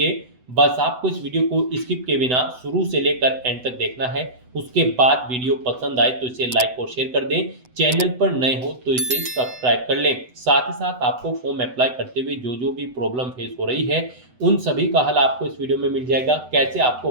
बस आपको इस वीडियो को स्किप के बिना शुरू से लेकर एंड तक देखना है। उसके बाद वीडियो पसंद आए तो इसे लाइक और शेयर कर दें। चैनल पर नए हो तो इसे सब्सक्राइब कर लें। साथ ही साथ आपको फॉर्म अप्लाई करते हुए जो भी प्रॉब्लम फेस हो रही है उन सभी का हल आपको इस वीडियो में मिल जाएगा। कैसे आपको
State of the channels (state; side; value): late; left; 8.0 ms